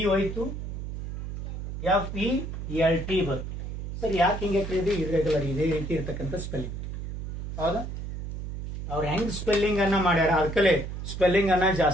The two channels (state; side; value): noise; right; hum, 7 dB below the sound